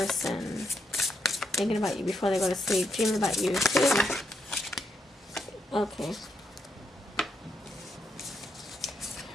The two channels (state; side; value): normal; both; correlation 0.80